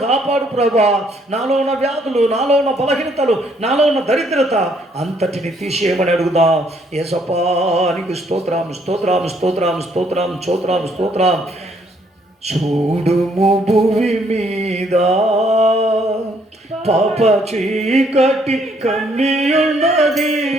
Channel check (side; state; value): both; normal; correlation 0.67